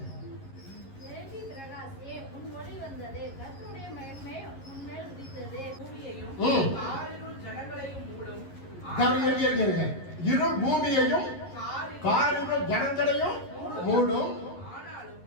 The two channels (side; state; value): right; late; 11 ms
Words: எழும்பி பிரகாசியே, உன் ஒளி வந்தது, கர்த்தருடைய மகிமை உன்மேல் உதித்தது. பூமியையும் ம். காரிருள் ஜனங்களையும் மூடும். இரு பூமியையும் காரிருள் காரிருள் ஜனங்களையும் மூடும். ஆனாலும்